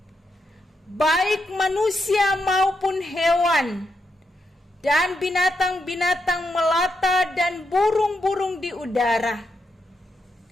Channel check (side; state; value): both; normal; correlation 0.83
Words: baik manusia maupun hewan, dan binatang-binatang melata dan burung-burung di udara.